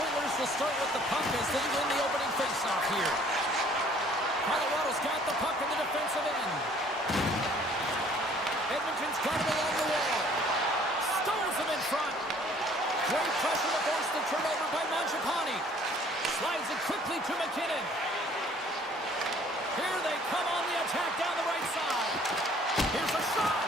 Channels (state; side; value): normal; both; correlation 0.57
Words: Oilers will start with the puck as they win the opening faceoff here. Colorado's got the puck in the defensive end. Edmonton's got him along the wall. Stones him in front. Great pressure to force the turnover by Mangiapane. Slides it quickly to McKinnon. Here they come on the attack down the right side. Here's a shot.